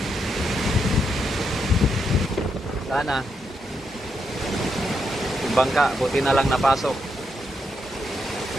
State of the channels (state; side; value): normal; both; correlation 0.81